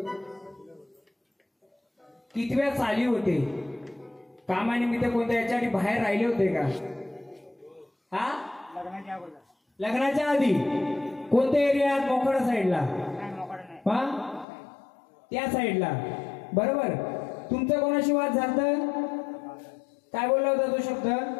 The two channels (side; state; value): right; drops out; at 14.5 s